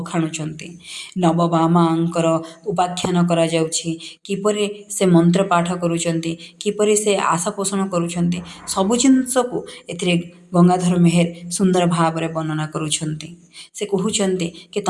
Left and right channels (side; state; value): both; identical; correlation 1.00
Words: ନବବାମାଙ୍କର ଉପାଖ୍ୟାନ କରାଯାଉଛି, କିପରି ସେ ମନ୍ତ୍ର ପାଠ କରୁଛନ୍ତି, କିପରି ସେ ଆଶା ପୋଷଣ କରୁଛନ୍ତି, ସବୁ ଜିନିଷକୁ ଏଥିରେ ଗଙ୍ଗାଧର ମେହେର ସୁନ୍ଦର ଭାବରେ ବର୍ଣ୍ଣନା କରୁଛନ୍ତି। ସେ କହୁଛନ୍ତି କି